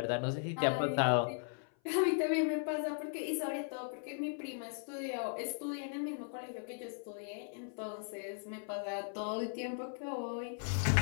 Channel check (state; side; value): silent; right; 53 dB below the other